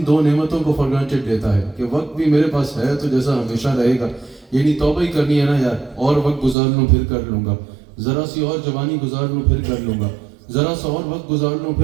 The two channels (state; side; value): drops out; left; at 6.6 s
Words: دو نعمتوں کو فار گرانٹیڈ لیتا ہے کہ وقت بھی میرے پاس ہے تو جیسا ہمیشہ رہے گا، یعنی توبہ ہی کرنی ہے نا یار، اور وقت گزار لوں پھر کر لوں گا، ذرا سی اور جوانی گزار لوں پھر کر لوں گا، ذرا سا اور وقت گزار لوں